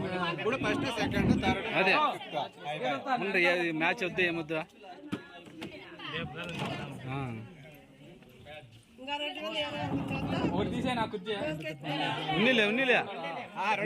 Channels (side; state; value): both; identical; correlation 1.00